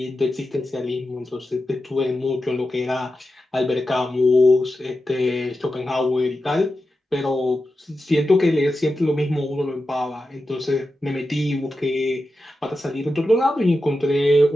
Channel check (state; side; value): normal; both; correlation 0.91